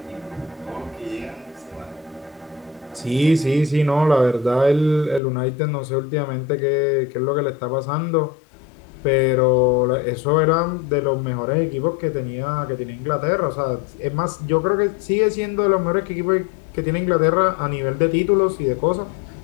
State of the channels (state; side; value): drops out; right; at 5.2 s